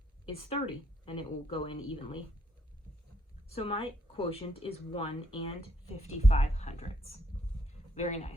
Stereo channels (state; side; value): normal; both; correlation 0.73